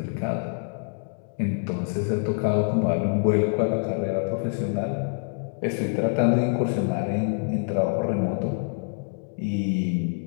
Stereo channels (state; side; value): silent; right; 61 dB below the other